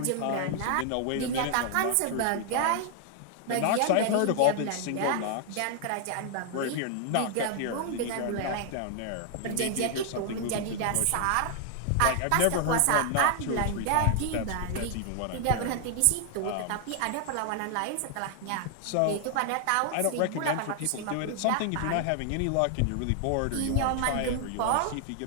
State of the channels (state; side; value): different; both; correlation 0.00